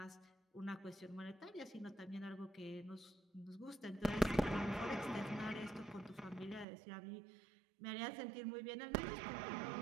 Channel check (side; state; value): left; drops out; at 6.7 s